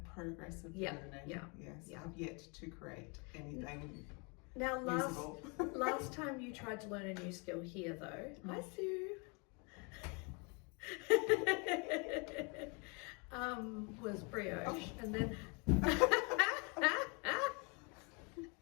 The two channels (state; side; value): quieter; right; 32.7 dB